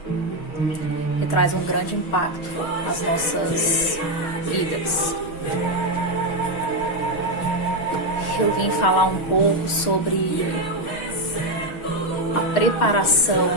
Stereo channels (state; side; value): late; right; 6.3 ms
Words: Que traz um grande impacto nas nossas vidas. Eu vim falar um pouco sobre a preparação